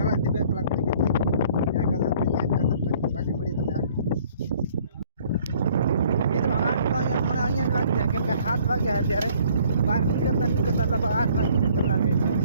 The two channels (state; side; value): inverted; both; correlation -0.58